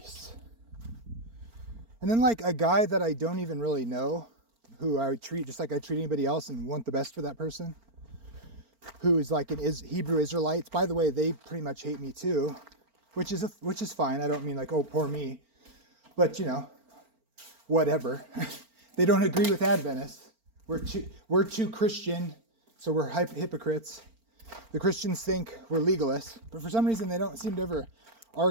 And then like a guy that I don't even really know, who I treat just like I treat anybody else and want the best for that person, who is like Hebrew Israelites. By the way, they pretty much hate me too, which is fine. I don't mean like, oh, poor me, but you know, whatever. They don't agree with Adventists. We're too Christian, so we're hypocrites. The Christians think we're legalists, but for some reason they don't seem to ever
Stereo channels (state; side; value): late; left; 4.4 ms